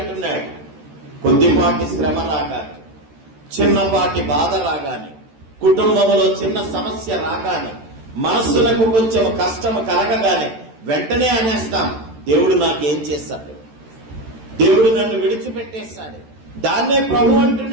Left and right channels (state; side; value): late; left; 13 ms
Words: కొద్దిపాటి శ్రమ రాగానే, చిన్నపాటి బాధ రాగానే, కుటుంబంలో చిన్న సమస్య రాగానే, మనస్సులకు కొంచెం కష్టం కలగగానే వెంటనే అనేస్తాం, దేవుడు నాకేం చేశాడు, దేవుడు నన్ను విడిచిపెట్టేశాడు. దాన్నే ప్రభు